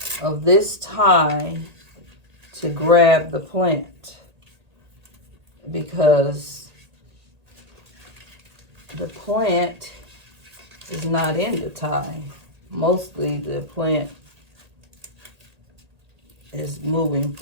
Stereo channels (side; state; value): left; late; 1.8 ms